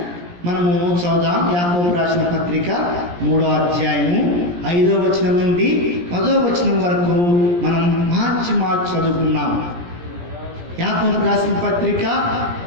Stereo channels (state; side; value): late; left; 17 ms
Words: మనము చదువుదాం. యాకోబు రాసిన పత్రిక 3వ అధ్యాయము 5వ వచనం నుండి 10వ వచనం వరకు మనం మార్చి చదువుకున్నాం. యాకోబు రాసిన పత్రిక